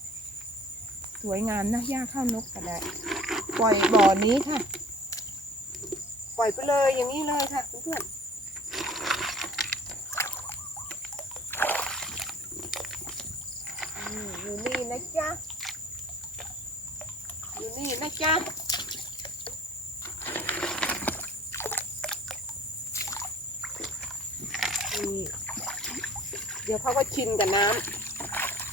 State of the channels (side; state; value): both; normal; correlation 0.49